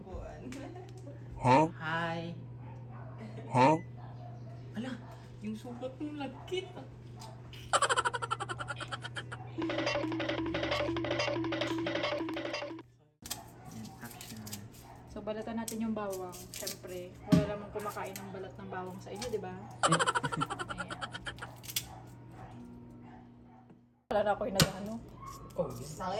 Huh? Hi. Huh? Ala, yung sukat ng lagkit. So, balatan natin yung bawang. Siyempre, wala namang kumakain ng balat ng bawang sa inyo, di ba? Ayan. Wala na ako yung nag-ano. Oh,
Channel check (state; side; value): identical; both; correlation 1.00